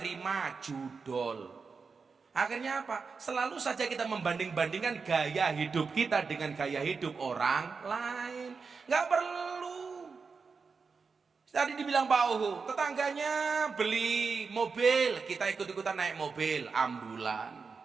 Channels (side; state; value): left; quieter; 5.0 dB